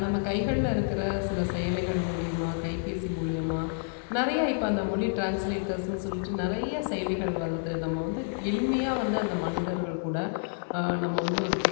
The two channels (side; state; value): right; silent; 59 dB below the other